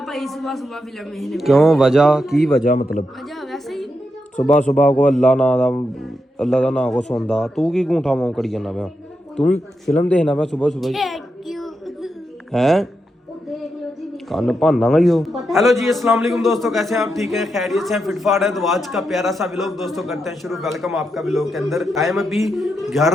भाई सुबह सुबह फिल्म है। क्यों, वजह की वजह मतलब? वजह वैसे ही सुबह सुबह को अल्लाह का नाम को सुनदा तू की गूंठा मां करी जाना पिया? तू भी फिल्म देखना पिया सुबह सुबह हैं? कान भाना ही हो। हेलो जी अस्सलाम वालेकुम दोस्तों, कैसे हैं आप? ठीक है, खैरियत से हैं, फिटफाट है। तो आज का प्यारा सा व्लॉग दोस्तों करते हैं शुरू। वेलकम आपका व्लॉग के अंदर। टाइम अभी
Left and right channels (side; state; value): both; normal; correlation 0.85